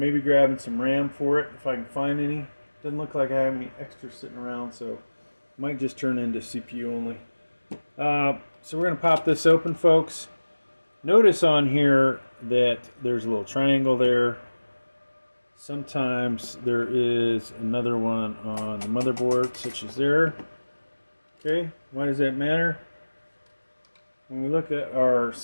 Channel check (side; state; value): both; inverted; correlation -1.00